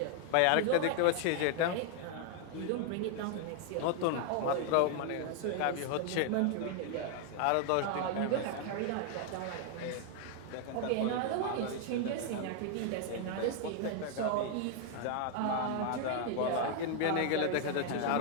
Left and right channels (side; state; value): both; different; correlation 0.00